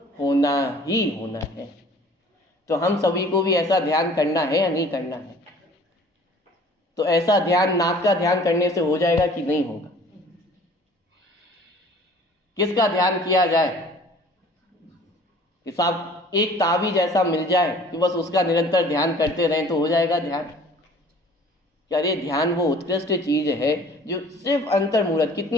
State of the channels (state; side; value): normal; both; correlation 0.50